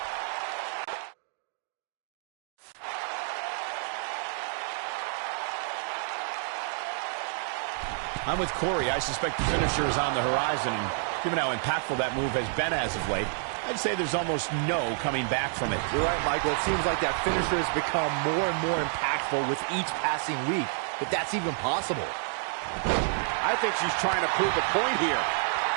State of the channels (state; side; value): silent; left; 59 dB below the other